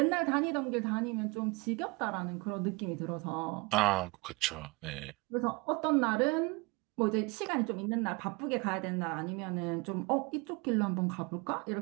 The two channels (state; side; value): quieter; left; 26.6 dB